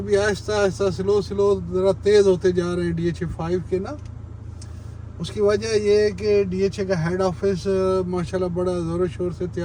आहिस्ता आहिस्ता स्लो ज़रा तेज़ होते जा रहे हैं DHA 5 के ना। उसकी वजह ये है कि DHA का हेड ऑफिस माशाल्लाह बड़ा ज़ोर शोर से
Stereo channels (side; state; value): both; identical; correlation 1.00